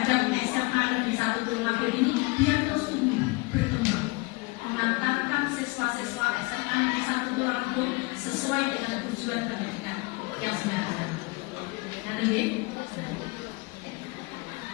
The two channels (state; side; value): quieter; right; 25.6 dB